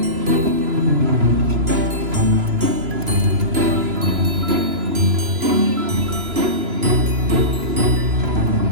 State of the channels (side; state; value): left; late; 3.0 ms